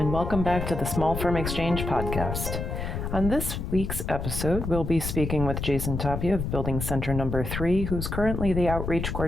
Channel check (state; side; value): noise; left; rumble, 4 dB below the sound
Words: welcome back to the Small Firm Exchange podcast. On this week's episode, we'll be speaking with Jason Tapia of Building Center Number 3, who's currently the outreach